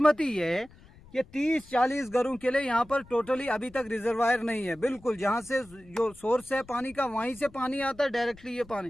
ये है कि 30-40 घरों के लिए यहाँ पर टोटली अभी तक रिजर्वायर नहीं है। बिल्कुल जहाँ से जो सोर्स है पानी का वहीं से पानी आता है डायरेक्टली ये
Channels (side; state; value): left; noise; rumble, 24 dB below the sound